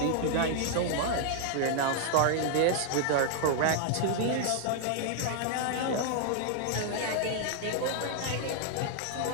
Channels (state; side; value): different; both; correlation -0.01